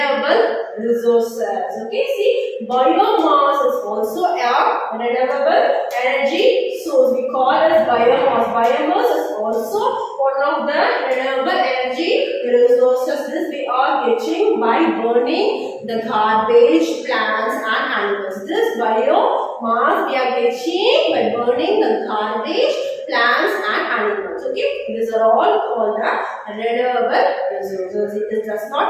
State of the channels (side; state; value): both; identical; correlation 1.00